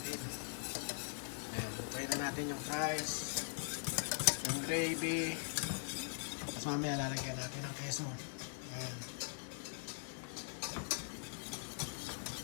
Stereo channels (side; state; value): right; silent; digital silence